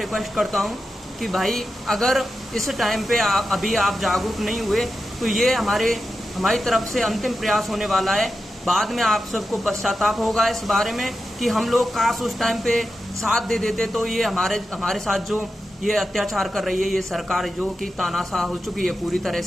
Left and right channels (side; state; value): both; normal; correlation 0.90